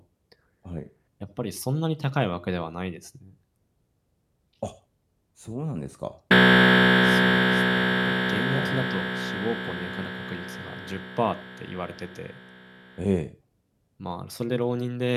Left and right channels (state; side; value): identical; both; correlation 1.00